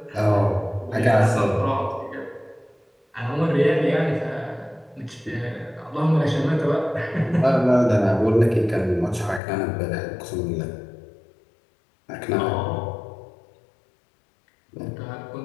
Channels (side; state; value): right; drops out; at 9.4 s